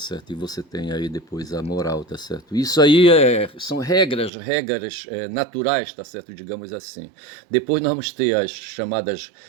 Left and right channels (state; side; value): drops out; left; at 4.3 s